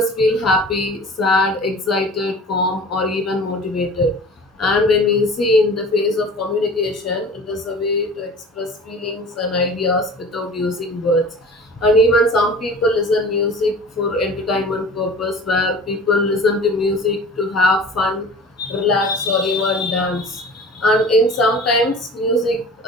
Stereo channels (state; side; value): normal; both; correlation 0.41